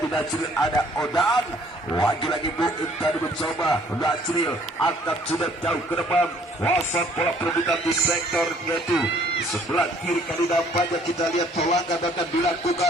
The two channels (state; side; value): normal; both; correlation 0.60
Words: Najril ada Odan, lagi-lagi Muin tadi mencoba. Najril angkat sudah jauh ke depan, pasang bola perebutan di sektor yaitu sebelah kiri. Kali nampaknya kita lihat pelanggan akan